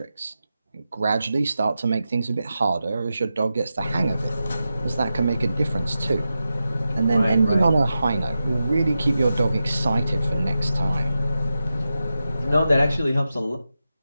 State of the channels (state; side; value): inverted; both; correlation -0.91